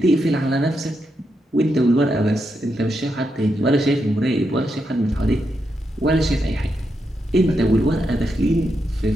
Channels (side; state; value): both; normal; correlation 0.83